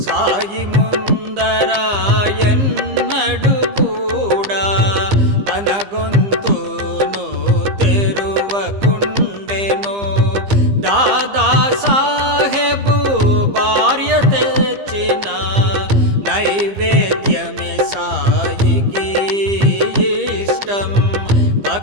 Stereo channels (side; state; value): left; late; 15 ms